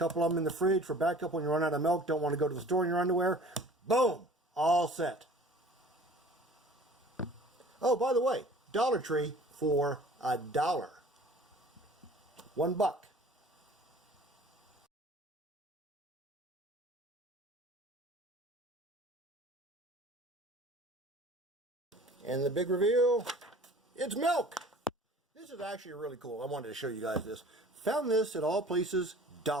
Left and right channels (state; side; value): normal; both; correlation 0.47